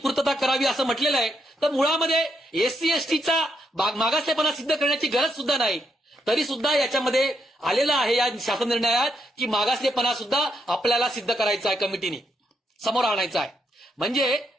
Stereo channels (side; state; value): both; normal; correlation 0.78